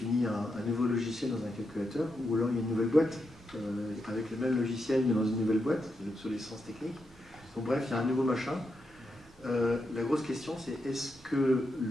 un nouveau logiciel dans un calculateur, ou alors il y a une nouvelle boîte avec le même logiciel mais dans une nouvelle boîte, c'est l'obsolescence technique. Donc bref, il y a un nouveau machin. La grosse question, c'est est-ce que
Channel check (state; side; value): normal; both; correlation 0.84